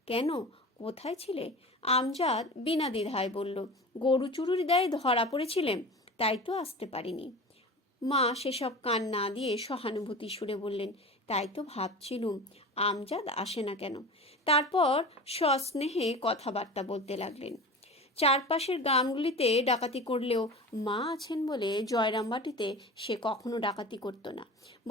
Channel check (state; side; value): normal; both; correlation 0.33